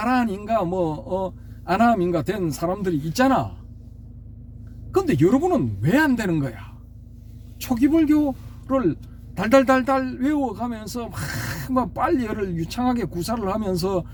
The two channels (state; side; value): identical; both; correlation 1.00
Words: 아남인가 된 사람들이 있잖아. 근데 여러분은 왜 안 되는 거야? 초기 불교를 달달달달 외워가면서 막 빨리를 유창하게 구사를 하면서